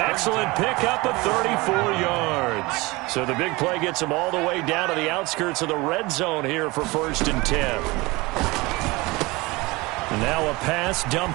excellent pickup of 34 yards. So the big play gets him all the way down to the outskirts of the red zone here for 1st and 10. And now a pass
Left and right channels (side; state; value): left; quieter; 23.1 dB